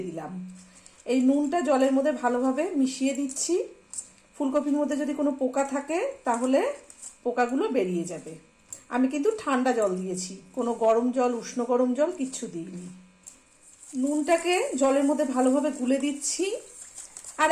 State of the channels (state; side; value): identical; both; correlation 1.00